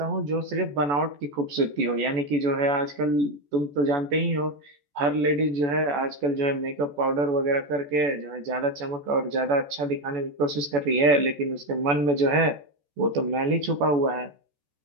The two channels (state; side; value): late; left; 14 ms